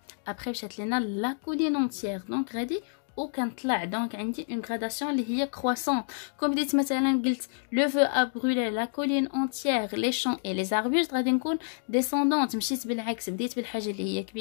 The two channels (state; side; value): silent; right; digital silence